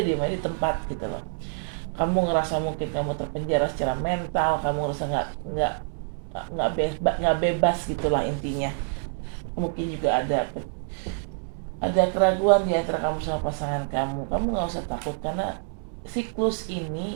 di tempat gitu loh. Kamu ngerasa mungkin kamu terpenjara secara mental, kamu ngerasa nggak bebas gitulah intinya. Mungkin juga ada keraguan di antara kamu sama pasangan kamu. Kamu nggak usah takut, karena siklus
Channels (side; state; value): left; silent; digital silence